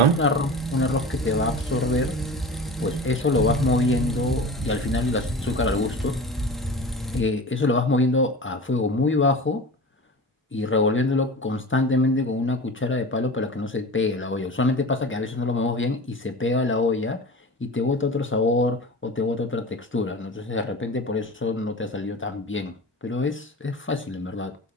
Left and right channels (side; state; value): both; normal; correlation 0.34